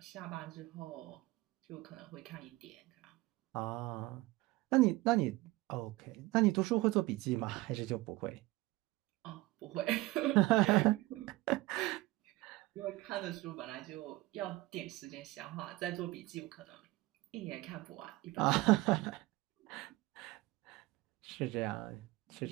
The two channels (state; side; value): quieter; left; 19.9 dB